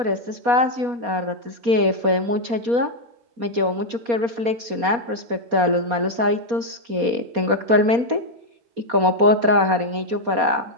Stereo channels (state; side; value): late; left; 4.2 ms